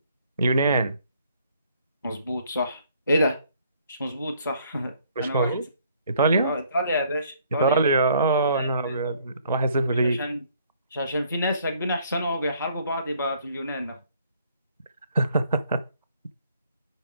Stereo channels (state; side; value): inverted; both; correlation -0.63